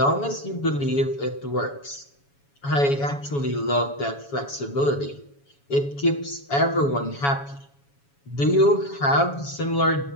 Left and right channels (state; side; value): late; right; 7.1 ms